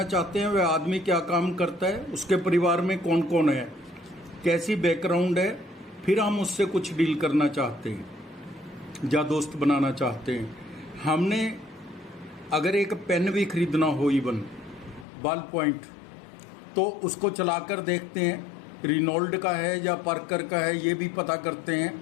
चाहते हैं वह आदमी क्या काम करता है, उसके परिवार में कौन कौन है, कैसी बैकग्राउंड है, फिर हम उससे कुछ डील करना चाहते हैं या दोस्त बनाना चाहते हैं। हमने अगर एक पेन भी खरीदना हो, इवन बॉल पॉइंट, तो उसको चलाकर देखते हैं रिनोल्ड का है या पार्कर का है, ये भी पता करते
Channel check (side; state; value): right; drops out; at 15.1 s